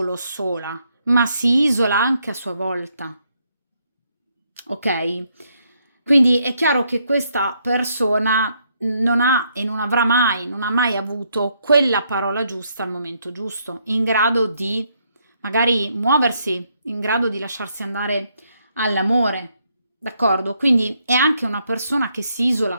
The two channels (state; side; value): inverted; both; correlation -0.74